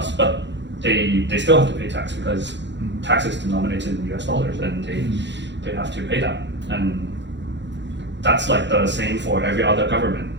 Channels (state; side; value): late; left; 0.52 ms